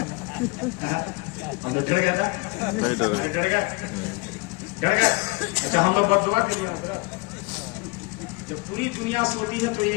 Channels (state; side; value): quieter; right; 26.0 dB